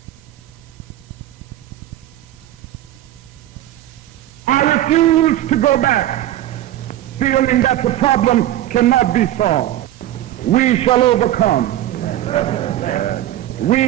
I refuse to go back feeling that the problem cannot be solved. We shall overcome.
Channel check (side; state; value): left; quieter; 13.5 dB